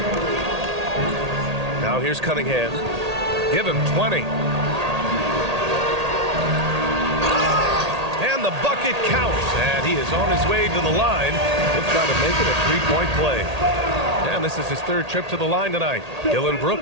Now here's Cunningham. Give him 20. And the bucket counts. And he is on his way to the line. He'll try to make it a three-point play. And this is his 3rd trip to the line tonight. Dylan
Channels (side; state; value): left; late; 1.8 ms